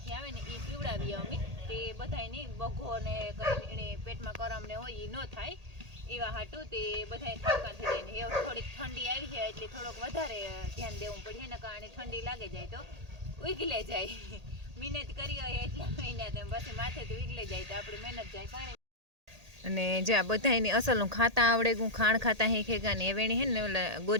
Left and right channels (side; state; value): left; late; 1.8 ms